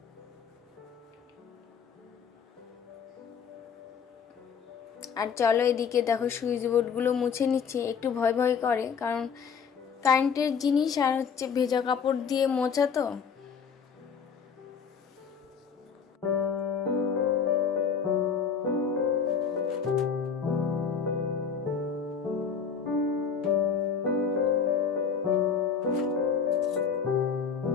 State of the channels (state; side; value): quieter; right; 6.5 dB